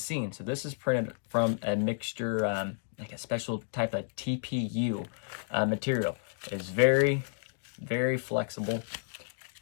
So this is printed from a mixture, like a special type of TPU material. It is very, very flexible.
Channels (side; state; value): right; silent; digital silence